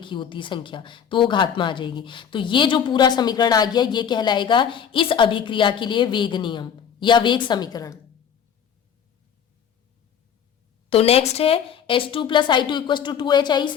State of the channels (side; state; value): right; quieter; 8.1 dB